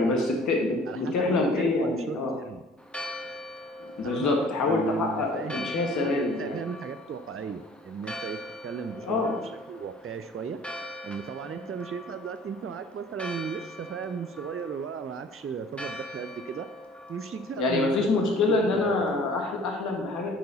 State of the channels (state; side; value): normal; both; correlation 0.50